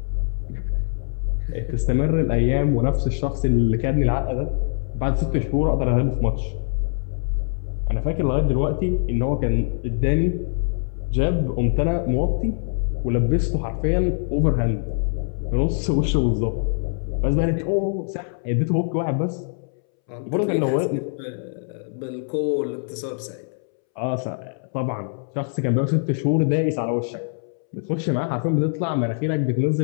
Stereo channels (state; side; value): silent; right; 63 dB below the other